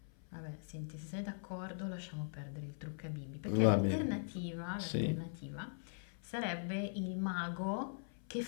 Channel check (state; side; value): silent; right; 51 dB below the other